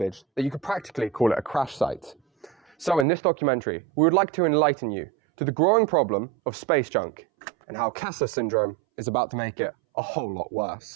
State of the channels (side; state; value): left; drops out; at 3.1 s